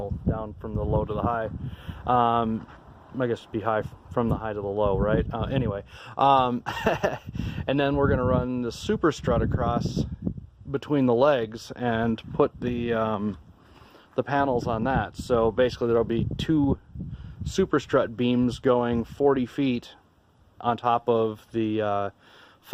down from the low to the high. I guess it'd be high from the high to the low, right? Anyway, and then we're gonna run the super strut across between the legs and put the panels on that. So basically there'll be 2 super strut beams going 40 feet on top of the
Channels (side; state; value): both; identical; correlation 1.00